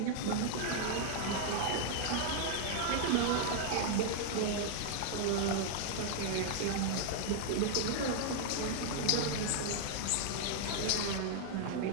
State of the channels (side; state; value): both; different; correlation -0.01